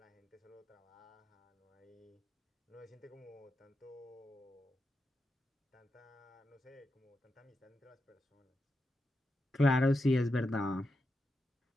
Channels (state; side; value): normal; both; correlation 0.87